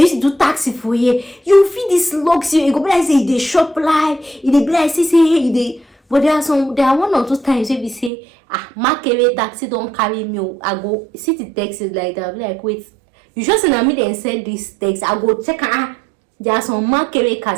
to do taxi for here. You feel this luxury, you go be like say they shop live, they be like say they. But there are one or two times where we say, market taxi don't carry me. I go sit the taxi like that. I be like, wait, you just send me then send this taxi. I go check. There are some market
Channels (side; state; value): left; drops out; at 8.1 s